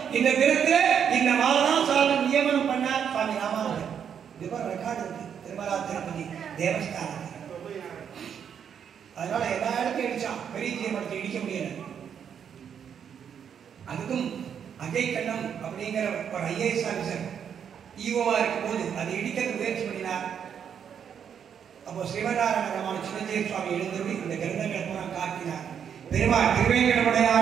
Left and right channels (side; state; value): left; quieter; 8.0 dB